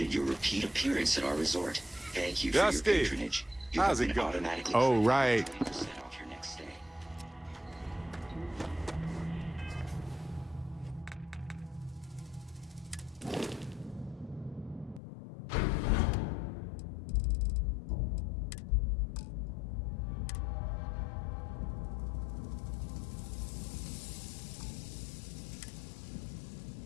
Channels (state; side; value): drops out; right; at 15.0 s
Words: your repeat appearance at our resort. Thank you for your Dusty, patronage. You how's have it been going? automatically Oh, right. 20% off your next stay.